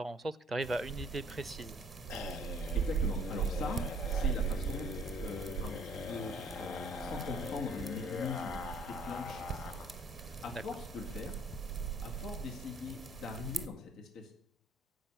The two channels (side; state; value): both; normal; correlation 0.57